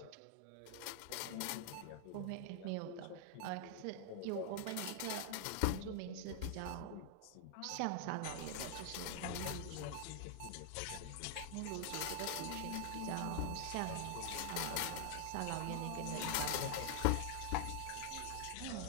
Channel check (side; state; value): both; different; correlation 0.00